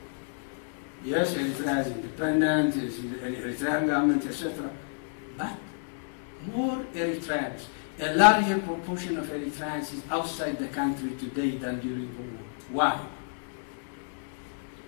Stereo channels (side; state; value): right; silent; digital silence